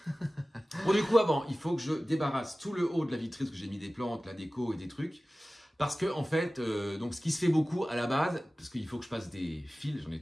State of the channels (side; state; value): both; normal; correlation 0.96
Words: Bon, du coup, avant, il faut que je débarrasse tout le haut de la vitrine, parce que j'ai mis des plantes, la déco et des trucs. Parce que, en fait, donc ce qui se fait beaucoup à la base, parce qu'il faut que je passe des fils, j'en ai